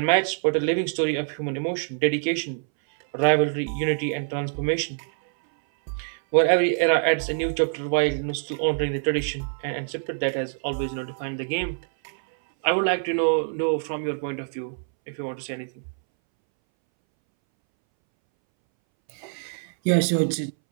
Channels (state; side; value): silent; left; 62 dB below the other